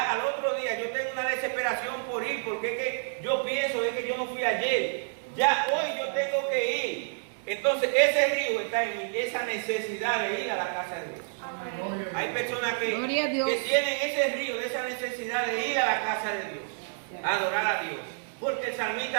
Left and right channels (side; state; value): left; silent; digital silence